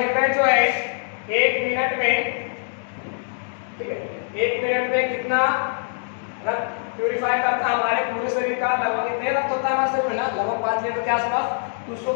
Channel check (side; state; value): right; silent; digital silence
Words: जो है 1 मिनट में, ठीक है, 1 मिनट में कितना रक्त प्यूरिफाई करता है, हमारे पूरे शरीर का लगभग कितने रक्त होता है हमारे शरीर में ना, लगभग 5 लीटर के आसपास। तो उसको